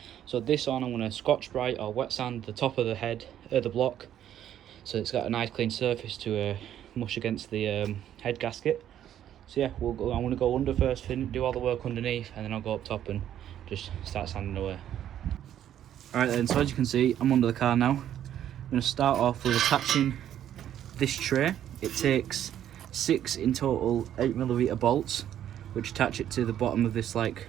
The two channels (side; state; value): left; quieter; 10.8 dB